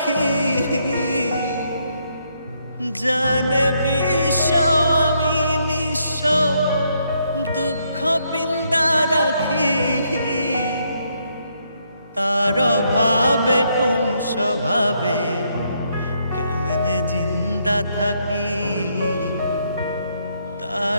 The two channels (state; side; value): inverted; both; correlation -0.74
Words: জানে বিশ্ব আমি নিঃস্ব, দুঃখ পিন্দা রাখি। তার অভাবে কোন স্বভাবে কেমনে জিন্দা থাকি।